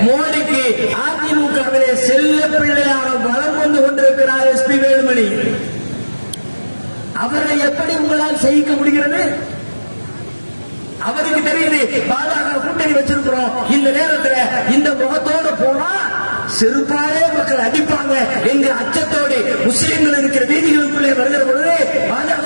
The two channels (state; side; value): inverted; both; correlation -1.00